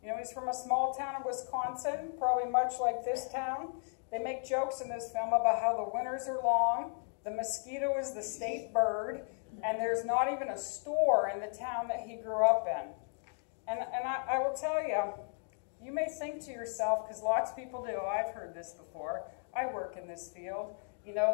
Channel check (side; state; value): right; silent; 54 dB below the other